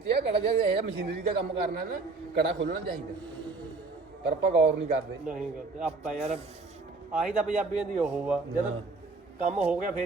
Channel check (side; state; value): left; quieter; 3.8 dB